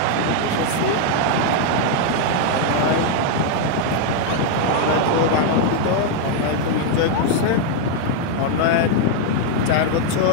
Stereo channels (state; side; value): different; both; correlation 0.00